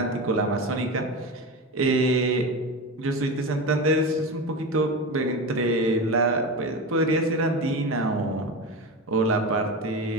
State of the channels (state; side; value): normal; both; correlation 0.24